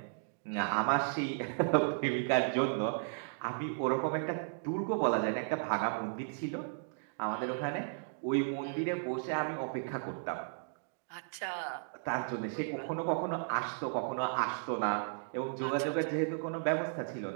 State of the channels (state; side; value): silent; left; digital silence